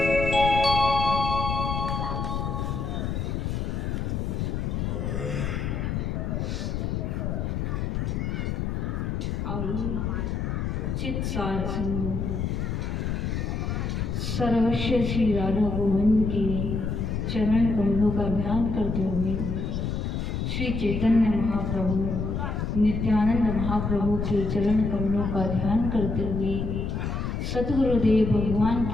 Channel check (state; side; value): noise; left; rumble, 1 dB below the sound